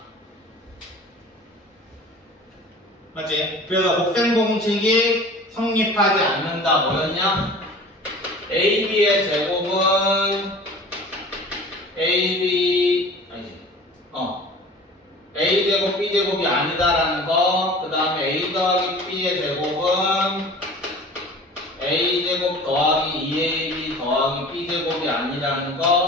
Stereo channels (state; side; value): normal; both; correlation 0.42